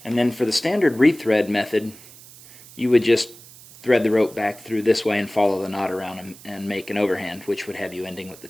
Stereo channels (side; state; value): right; noise; hiss, 20 dB below the sound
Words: and then for the standard rethread method, you would just thread the rope back through this way and follow the knot around and make an overhand, which would have you ending with the